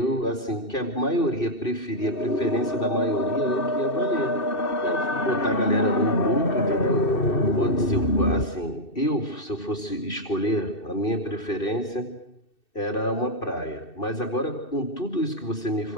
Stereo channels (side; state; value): right; late; 2.6 ms